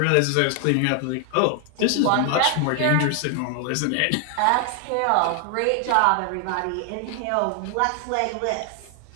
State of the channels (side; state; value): both; different; correlation 0.00